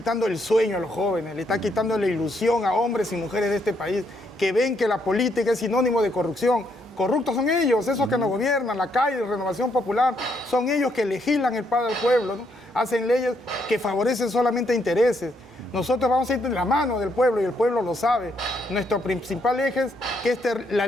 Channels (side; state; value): both; normal; correlation 0.74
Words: el sueño a los jóvenes, le está quitando la ilusión a hombres y mujeres de este país, que ven que la política es sinónimo de corrupción, corruptos son ellos, esos que nos gobiernan, la calle, Renovación Popular, son ellos que legislan el para el pueblo, ¿no? Hacen leyes que favorecen solamente intereses. Nosotros vamos a ir de la mano del pueblo y el pueblo lo sabe. Nuestro principal eje es que la